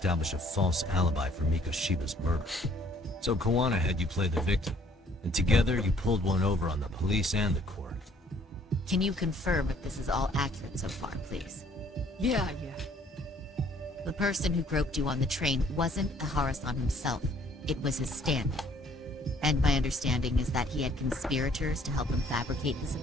a false alibi for Miko Shiba's murder. So Kawana had you play the victim, and together you pulled one over on the police and the court. Can you confirm if this is all accurate so far, please? Yeah. The person who groped you on the train wasn't Ihara-san himself. It was his stand-in. And my understanding is that he had conspirators to help him fabricate this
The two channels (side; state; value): both; normal; correlation 0.61